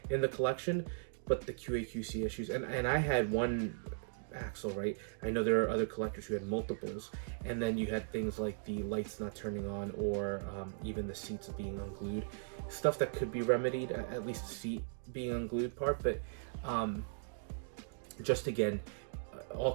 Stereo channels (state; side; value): silent; left; digital silence